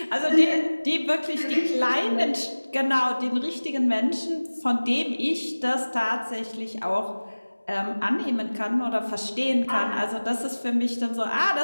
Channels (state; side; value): inverted; both; correlation -1.00